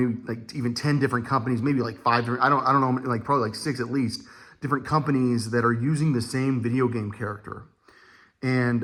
like even 10 different companies, maybe like 5, I don't know, like probably like 6 at least, different companies that are using the same video game character.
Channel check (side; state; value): both; identical; correlation 1.00